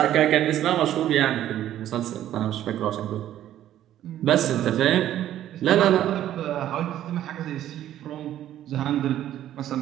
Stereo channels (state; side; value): quieter; left; 12.1 dB